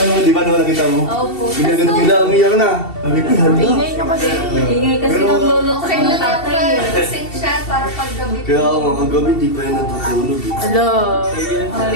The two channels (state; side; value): late; right; 2.7 ms